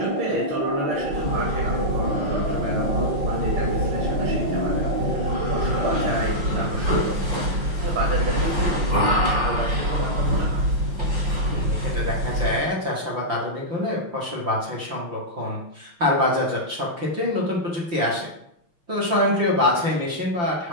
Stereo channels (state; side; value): late; left; 5.9 ms